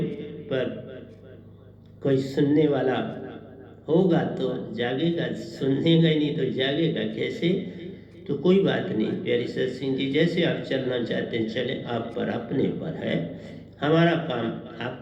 पर कोई सुनने वाला होगा तो जागेगा, सुनेगा ही नहीं तो जागेगा कैसे। तो कोई बात नहीं प्यारी सत्संग जी, जैसे आप चलना चाहते हैं चले, आप पर अपने पर है। हमारा काम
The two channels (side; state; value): both; identical; correlation 1.00